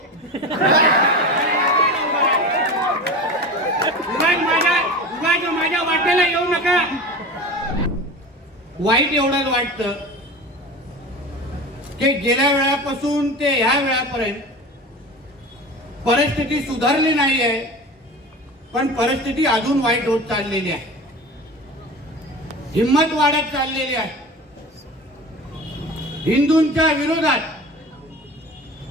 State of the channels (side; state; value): both; normal; correlation 0.32